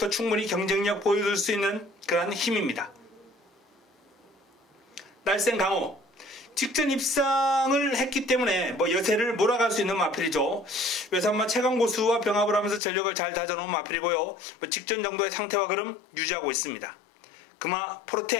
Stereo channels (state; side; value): drops out; right; at 12.8 s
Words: 충분히 경쟁력 보여줄 수 있는 그런 힘입니다. 날쌘 강호 직전 입상을 했기 때문에 여세를 몰아갈 수 있는 마필이죠. 외산마 최강고수와 병합을 하면서 전력을 잘 다져놓은 마필이고요. 직전 정도의 상태와 걸음 유지하고 있습니다. 금화